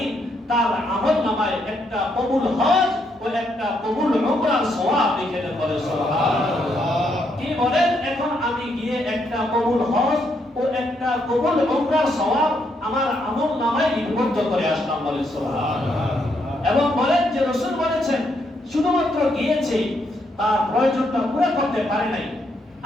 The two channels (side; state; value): both; normal; correlation 0.76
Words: তার আমলনামায় একটা কবুল হজ ও একটা কবুল উমরার সওয়াব লিখে দেন। বলে সুবহানাল্লাহ। কি বলেন, এখন আমি গিয়ে একটা কবুল হজ ও একটা কবুল উমরার সওয়াব আমার আমলনামায় লিপিবদ্ধ করে আসলাম। বলে সুবহানাল্লাহ। এবং বলেন যে রাসূল বলেছেন শুধুমাত্র গিয়েছে, তার প্রয়োজনটা পুরো করতে পারে নাই।